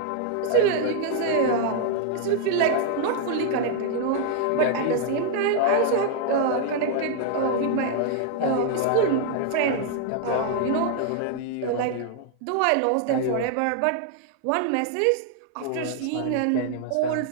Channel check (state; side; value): different; both; correlation 0.00